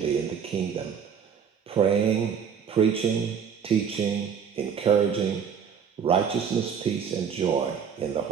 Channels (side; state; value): left; quieter; 7.3 dB